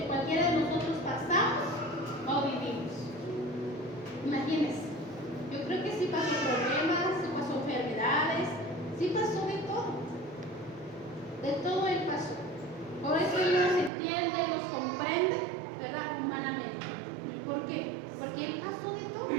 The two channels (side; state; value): left; drops out; at 13.9 s